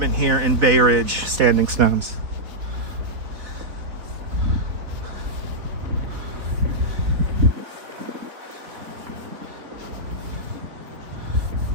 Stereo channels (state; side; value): late; left; 4.0 ms